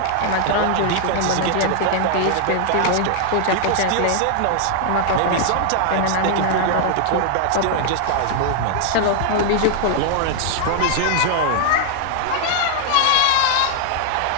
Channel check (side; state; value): both; different; correlation 0.00